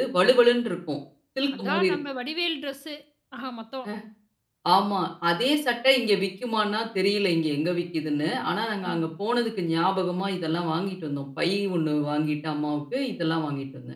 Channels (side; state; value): both; identical; correlation 1.00